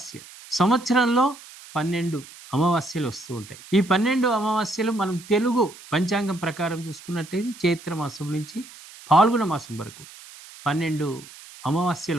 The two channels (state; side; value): noise; right; hiss, 19 dB below the sound